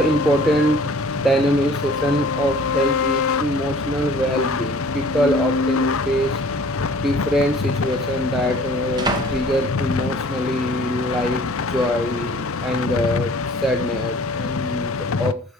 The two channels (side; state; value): both; normal; correlation 0.51